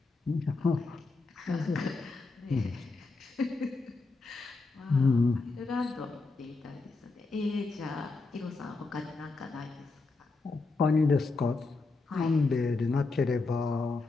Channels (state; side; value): quieter; right; 3.8 dB